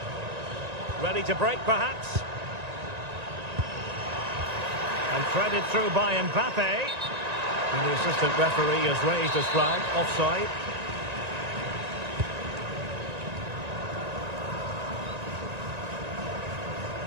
Ready to break, perhaps. And threaded through by Mbappe. And the assistant referee has raised his flag, offside.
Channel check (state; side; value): late; left; 1.9 ms